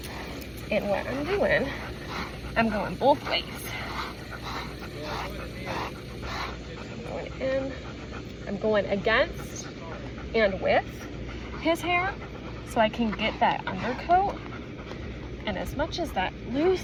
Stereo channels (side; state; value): both; identical; correlation 1.00